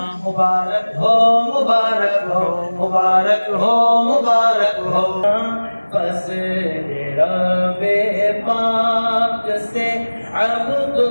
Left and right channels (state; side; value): inverted; both; correlation -1.00